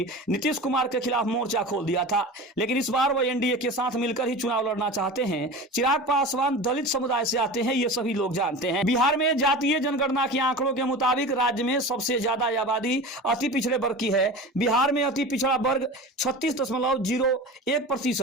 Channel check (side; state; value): both; normal; correlation 0.33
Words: नीतीश कुमार के खिलाफ मोर्चा खोल दिया था, लेकिन इस बार वह एनडीए के साथ मिलकर ही चुनाव लड़ना चाहते हैं। चिराग पासवान दलित समुदाय से आते हैं, ये सभी लोग जानते हैं। बिहार में जातीय जनगणना के आंकड़ों के मुताबिक राज्य में सबसे ज्यादा आबादी अति पिछड़े वर्ग की है। बिहार में अति पिछड़ा वर्ग